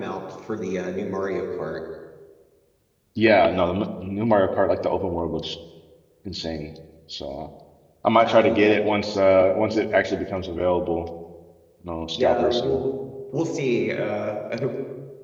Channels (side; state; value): both; identical; correlation 1.00